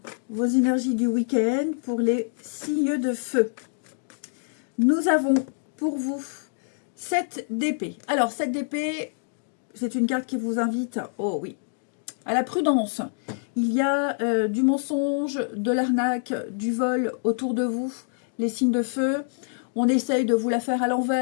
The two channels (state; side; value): silent; right; digital silence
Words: vos énergies du week-end pour les signes de feu. Nous avons pour vous 7 d'épée. Alors, 7 d'épée, c'est une carte qui vous invite, oh oui, à la prudence. Il y a du mensonge, de l'arnaque, du vol autour de vous, les signes de feu. On essaye de vous la faire à